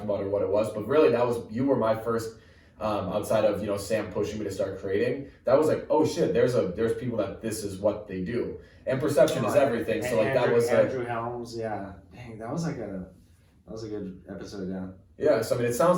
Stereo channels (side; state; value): both; identical; correlation 1.00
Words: about or what it was, but really you were my first outside of Sam pushing me to start creating. That was like, oh shit, there's people that this is what they do, and perception is everything. So like Andrew Helms, yeah, dang, that was like That was a good episode, yeah. Yeah, so I mean, it